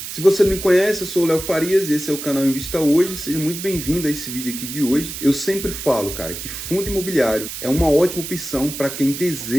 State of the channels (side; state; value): right; noise; hiss, 8 dB below the sound